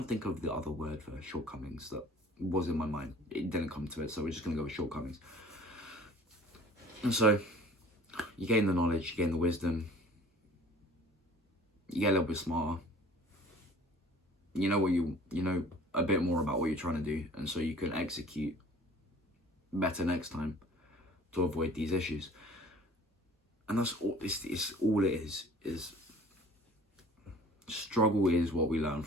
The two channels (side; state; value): both; normal; correlation 0.49